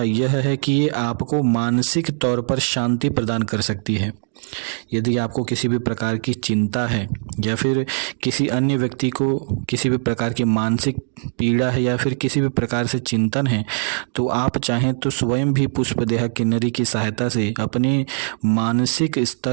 यह है कि ये आपको मानसिक तौर पर शांति प्रदान कर सकती है। यदि आपको किसी भी प्रकार की चिंता है या फिर किसी अन्य व्यक्ति को किसी भी प्रकार की मानसिक पीड़ा है या फिर किसी भी प्रकार से चिंतन है, तो आप चाहें तो स्वयं भी पुष्पदेहा किन्नरी की सहायता से अपने मानसिक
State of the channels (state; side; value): silent; left; digital silence